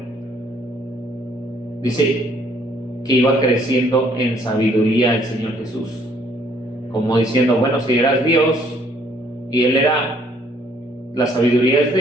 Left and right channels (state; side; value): normal; both; correlation 0.64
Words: dice que iba creciendo en sabiduría el Señor Jesús, como diciendo, bueno, si eras Dios y Él era, la sabiduría es